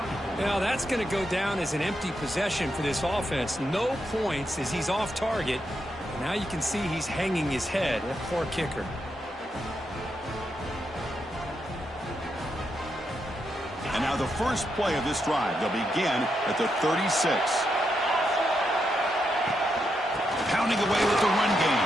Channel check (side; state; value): both; normal; correlation 0.82